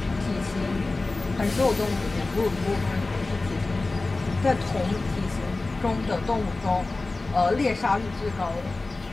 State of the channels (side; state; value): right; quieter; 3.3 dB